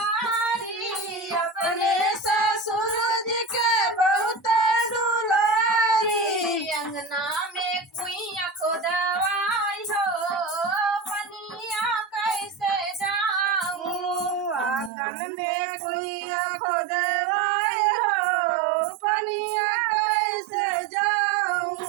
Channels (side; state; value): left; drops out; at 14.9 s